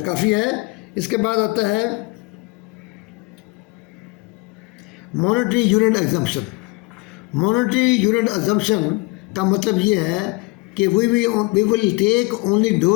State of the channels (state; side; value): quieter; right; 25.8 dB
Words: کافی ہے۔ اس کے بعد آتا ہے monetary unit assumption. Monetary unit assumption کا مطلب یہ ہے کہ we will take only